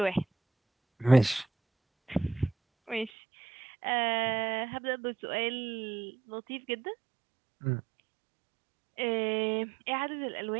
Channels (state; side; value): drops out; left; at 3.1 s